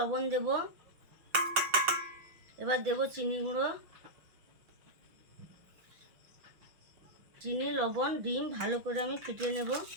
দেব, এবার দেব চিনি গুঁড়ো। চিনি, লবণ, ডিম ভালো করে আমি ফুটিয়ে নেব।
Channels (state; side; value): late; left; 5.9 ms